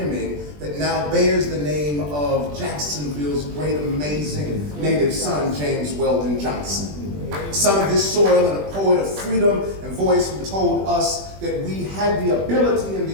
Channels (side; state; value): left; late; 20 ms